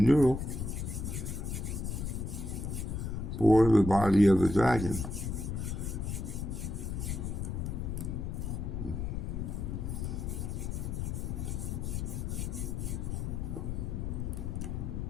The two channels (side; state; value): left; noise; rumble, 3 dB below the sound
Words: for the body of the dragon.